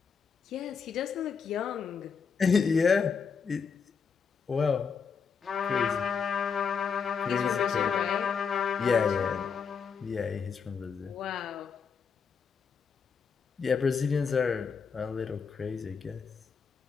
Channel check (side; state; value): right; quieter; 6.0 dB